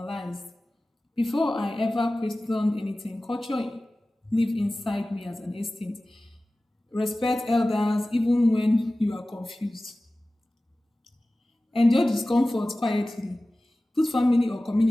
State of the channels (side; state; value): both; normal; correlation 0.97